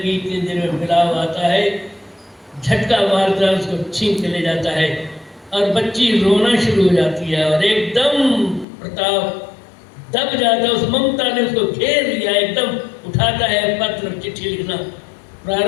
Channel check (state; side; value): drops out; right; at 8.7 s